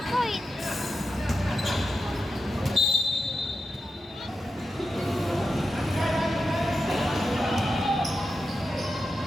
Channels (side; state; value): both; normal; correlation 0.89